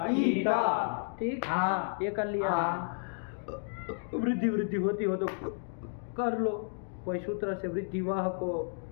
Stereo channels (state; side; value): silent; right; digital silence